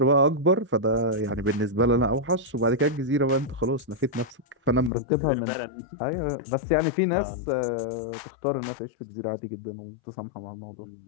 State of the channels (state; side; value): drops out; right; at 4.9 s